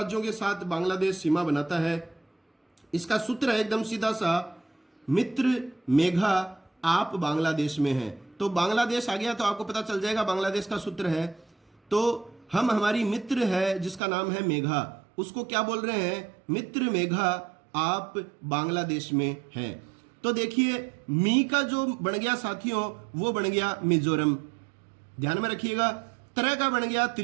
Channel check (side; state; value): left; drops out; at 14.0 s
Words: के साथ बांग्लादेश सीमा बनाता है। इसका सूत्र है एकदम सीधा सा, मित्र मेघा आप बांग्लादेश में हैं। तो बांग्लादेश आ गया तो आपको पता चल जाएगा बांग्लादेश का सूत्र है। तो हम हमारी मित्र है जिसका नाम है मेघा, उसको क्या बोल रहे हैं? मित्र मेघा आप बांग्लादेश में हैं। तो देखिए मी का जो बन गया साथियों वो बन गया मिजोरम, ध्यान में रखिएगा। तरह का बन गया